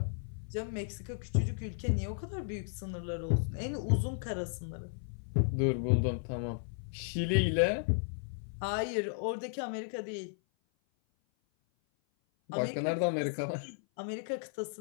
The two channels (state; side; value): silent; right; 55 dB below the other